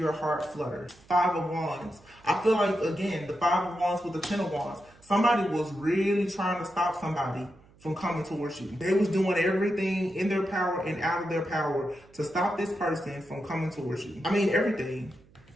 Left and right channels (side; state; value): right; noise; hum, 27 dB below the sound